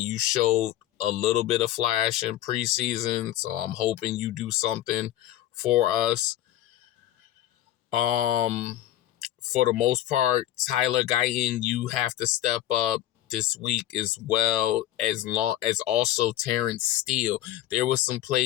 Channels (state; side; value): quieter; right; 13.4 dB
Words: You showed a little bit of flash in preseason. So I'm hoping you do something for us. For the most part, Tyler Guyton, you have to step up this week as well, as long as also Terrence Steele. There was some